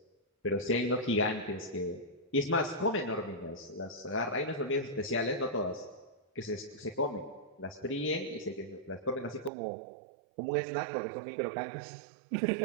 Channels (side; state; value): left; drops out; at 9.5 s